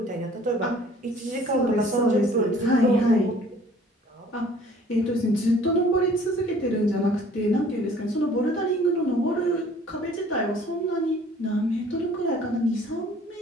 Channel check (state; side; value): normal; both; correlation 0.53